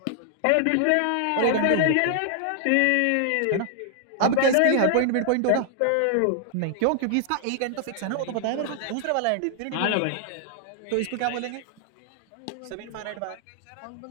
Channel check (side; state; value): both; different; correlation 0.00